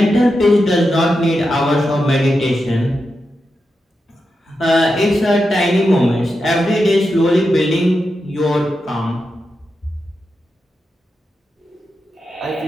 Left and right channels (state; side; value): normal; both; correlation 0.88